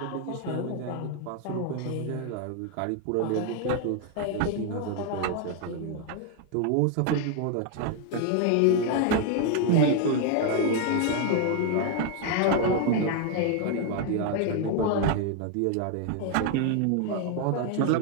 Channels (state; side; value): different; both; correlation 0.01